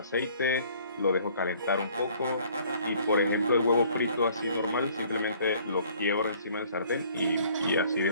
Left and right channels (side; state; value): both; inverted; correlation -0.57